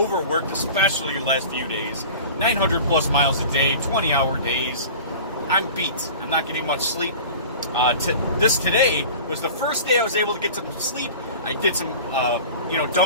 especially the last few days. 900 plus miles a day, 20-hour days. I'm beat. I'm not getting much sleep. Today was the first day I was able to get some sleep. I did some,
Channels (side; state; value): both; inverted; correlation -0.38